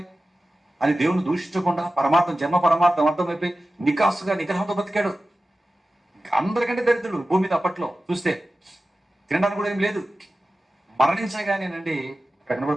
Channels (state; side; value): normal; both; correlation 0.94